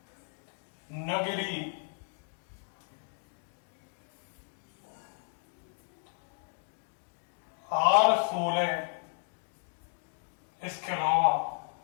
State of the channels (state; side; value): silent; right; 55 dB below the other